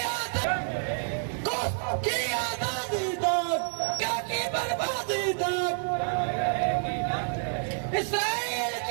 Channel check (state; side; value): silent; left; digital silence